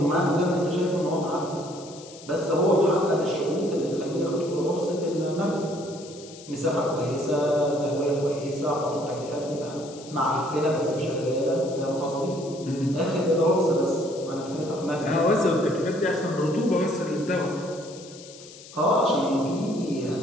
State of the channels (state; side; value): noise; left; hiss, 18 dB below the sound